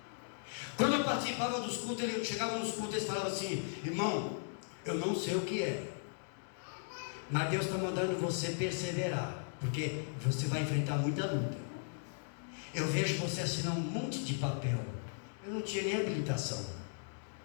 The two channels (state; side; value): silent; right; digital silence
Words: Quando eu participava dos cultos, eu chegava nos cultos e eles falavam assim: irmão, eu não sei o que é, mas Deus está mandando você perseverar, porque você vai enfrentar muita luta. Eu vejo você assinar um monte de papel. Eu não tinha nem habilitação.